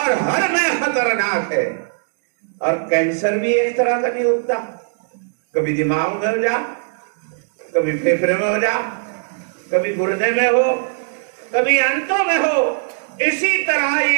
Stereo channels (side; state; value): left; silent; digital silence